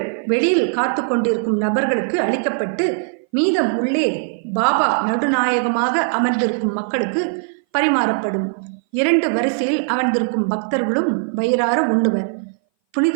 வெளியில் காத்து கொண்டிருக்கும் நபர்களுக்கு அளிக்கப்பட்டு மீதம் உள்ளே பாபா நடுநாயகமாக அமர்ந்திருக்கும் மக்களுக்கு பரிமாறப்படும். 2 வரிசையில் அமர்ந்திருக்கும் பக்தர்களும் வயிறார உண்ணுவர்.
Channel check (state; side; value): silent; left; 60 dB below the other